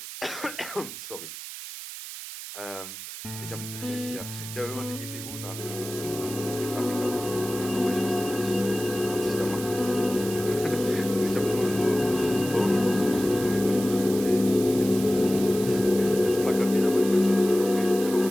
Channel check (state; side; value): noise; right; hiss, 11 dB below the sound